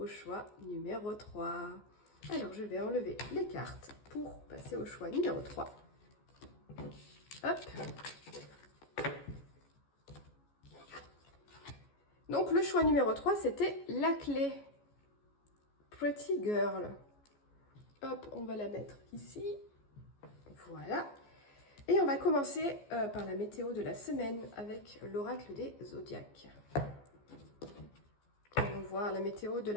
choix numéro 3. Alors, je vais enlever les cartes pour passer au choix numéro 3. Hop. Donc, le choix numéro 3, c'était la clé. Pretty Girl. Hop, on va la mettre ici. Voilà. Et on va commencer par la météo de la semaine avec l'oracle des zodiaques. On va voir la météo de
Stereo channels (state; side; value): late; right; 14 ms